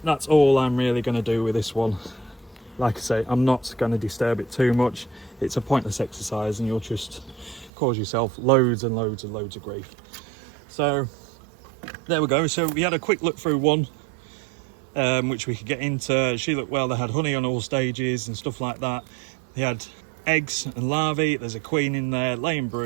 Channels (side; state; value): left; drops out; at 7.7 s